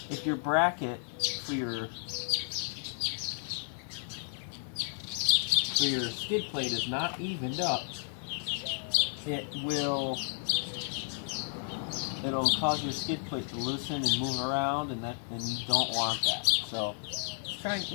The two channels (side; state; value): right; silent; 56 dB below the other